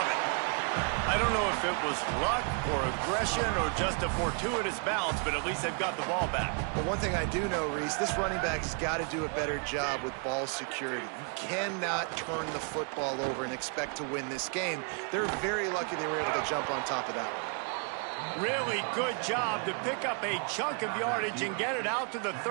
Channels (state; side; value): quieter; left; 39.4 dB